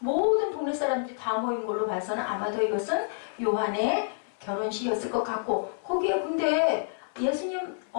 동네 사람들이 다 모인 걸로 봐서는 아마도 이것은 요한의 결혼식이었을 것 같고 거기에 근데 예수님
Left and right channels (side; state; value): right; silent; 59 dB below the other